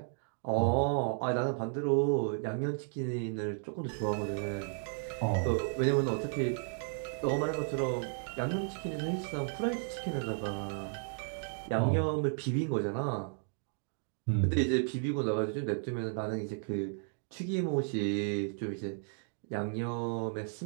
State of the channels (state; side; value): silent; left; 55 dB below the other